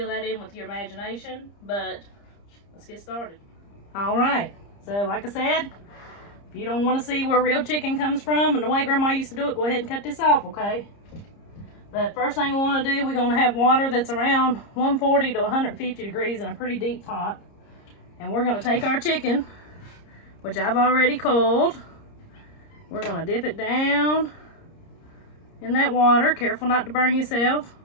that in with your imagination. But let's get started. Alright, so like I said, if you don't want to see where real chicken comes from and the way Grandma used to do it, go ahead and cut this off, okay? But first thing we want to do, we're going to have water that's around 140 to 150 degrees in a pretty deep pot. And we're going to take our chicken, which I've already coiled. We're going to dip it down in that water. Careful not to burn yourself.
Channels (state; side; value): late; right; 30 ms